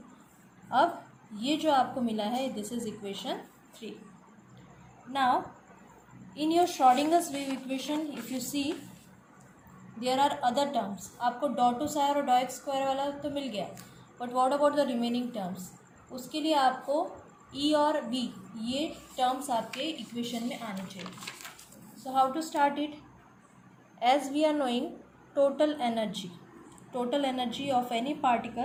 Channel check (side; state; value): both; identical; correlation 1.00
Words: अब ये जो आपको मिला है this is equation 3. Now in your Schrodinger's wave equation if you see there are other terms. आपको dou 2 psi और dou x स्क्वायर वाला तो मिल गया, but what about the remaining terms? उसके लिए आपको e और v ये टर्म्स आपके इक्वेशन में आने चाहिए. So how to start it? As we are knowing total energy of any